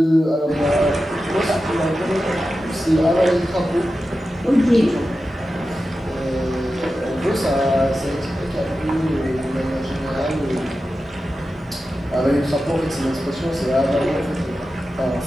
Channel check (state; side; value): normal; both; correlation 0.92